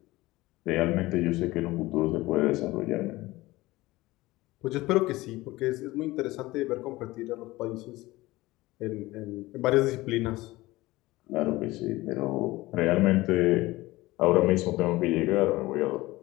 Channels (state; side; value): quieter; right; 19.3 dB